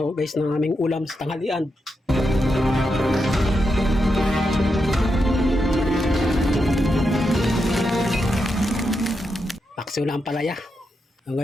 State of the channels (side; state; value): both; normal; correlation 0.85